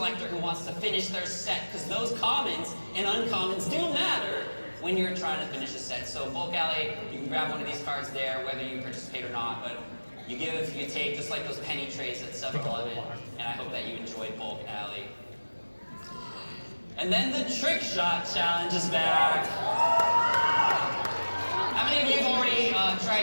who wants to finish their set, because those commons and uncommons do matter when you're trying to finish a set. So bulk alley, you can grab one of these cards there, whether you participate or not, but you give, you take, just like those penny trays at 7-Eleven, and I hope that you enjoyed bulk alley. And then the trick shot challenge is back. How many of you have already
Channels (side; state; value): both; inverted; correlation -1.00